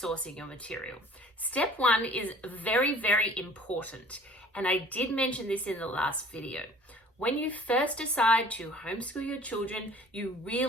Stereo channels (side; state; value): both; normal; correlation 0.49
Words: your material. Step one is very, very important, and I did mention this in the last video. When you first decide to homeschool your children, you